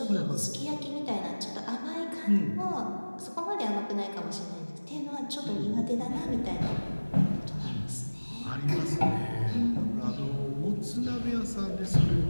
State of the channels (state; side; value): inverted; both; correlation -1.00